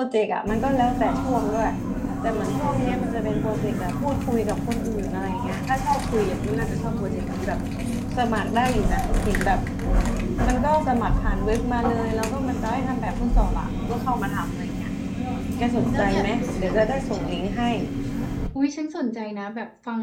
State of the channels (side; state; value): both; identical; correlation 1.00